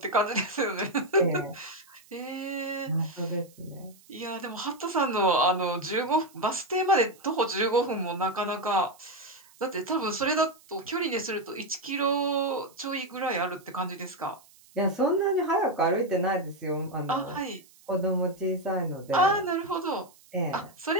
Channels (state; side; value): noise; right; hiss, 27 dB below the sound